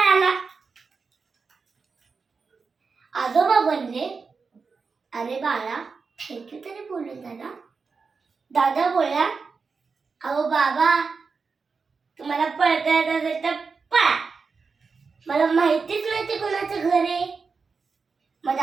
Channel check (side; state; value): left; quieter; 4.9 dB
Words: आजोबा म्हणले, अरे बाळा, थँक्यू तरी बोलून दादा. दादा बोलला, अहो बाबा, तुम्हाला पळता येत असेल तर पळा, मला माहितीच नाही ते कोणाचं घर आहे. मग